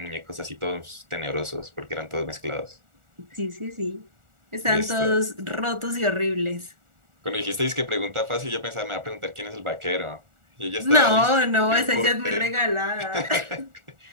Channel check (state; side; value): late; left; 1.4 ms